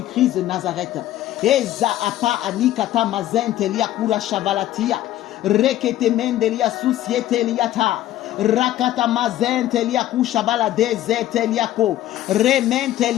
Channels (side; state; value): right; quieter; 13.7 dB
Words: de Nazareth. Eza apa anikata mazentelia kura shavalatia. Rekete mendelia susiete liata. Rakata mazentelia kushabala dezeteliako.